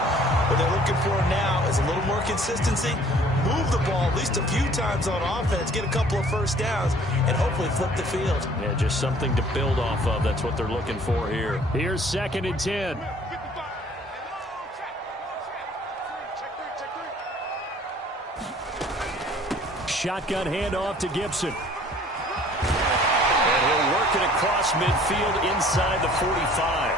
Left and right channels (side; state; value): both; normal; correlation 0.54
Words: What they're looking for now is a little more consistency, move the ball at least a few times on offense, get a couple of first downs, and hopefully flip the field. Yeah, just something to build off of. That's what they're looking for here. Here's 2nd and 10. Shotgun handoff to Gibson. And he'll work it across midfield inside the 45.